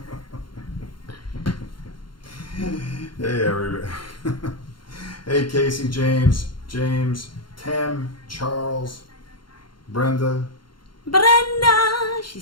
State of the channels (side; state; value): right; late; 0.72 ms